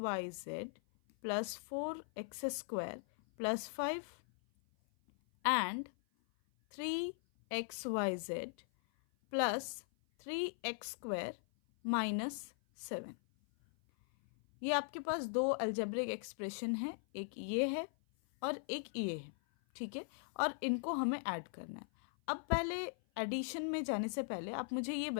plus 4x square plus 5 and 3xyz plus 3x square minus 7। ये आपके पास दो अलजेब्रिक एक्सप्रेशन है, एक ये है और एक ये है। ठीक है, और इनको हमें ऐड करना है। अब पहले एडिशन में जाने से पहले आप मुझे ये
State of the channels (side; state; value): right; silent; 51 dB below the other